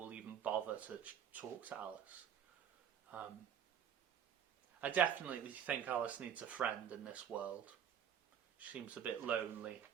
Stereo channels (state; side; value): quieter; left; 8.7 dB